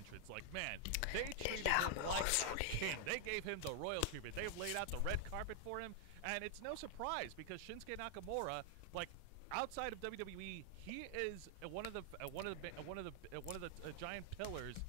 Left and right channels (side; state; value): both; different; correlation 0.00